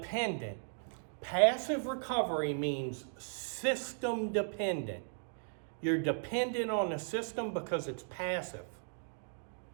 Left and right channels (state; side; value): silent; left; digital silence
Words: Passive recovery means system dependent. You're dependent on the system because it's passive.